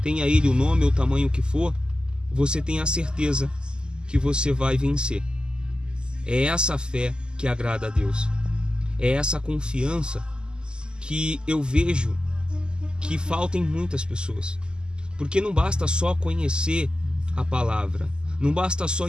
tenha ele o nome ou o tamanho que for, você tem a certeza que você vai vencer. É essa fé que agrada a Deus. É essa confiança que eu vejo que falta em muitas pessoas. Porque não basta só conhecer a palavra, não basta só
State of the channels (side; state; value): left; late; 0.047 ms